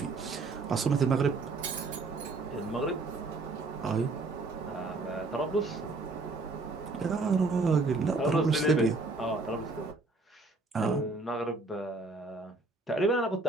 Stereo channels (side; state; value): left; quieter; 3.5 dB